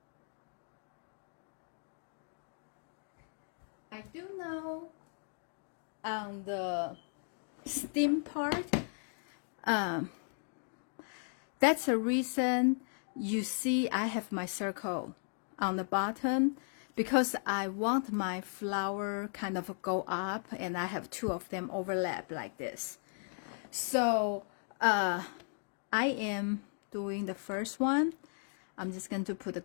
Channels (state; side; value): silent; right; 54 dB below the other